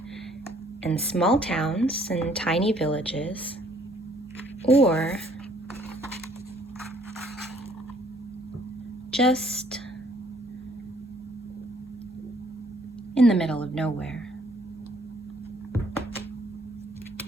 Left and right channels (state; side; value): normal; both; correlation 0.62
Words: and small towns and tiny villages, or just in the middle of nowhere.